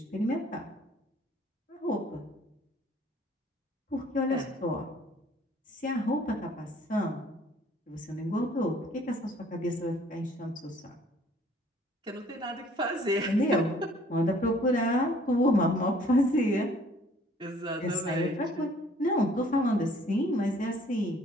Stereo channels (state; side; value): normal; both; correlation 0.57